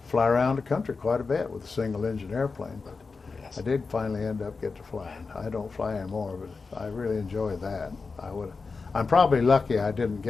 fly around the country quite a bit with a single-engine airplane, but I did finally end up getting to flying. I don't fly anymore, but I really enjoy that. I'm probably lucky I didn't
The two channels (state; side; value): quieter; right; 4.5 dB